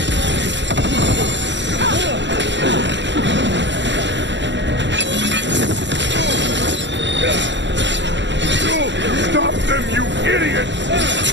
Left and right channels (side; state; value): left; late; 0.53 ms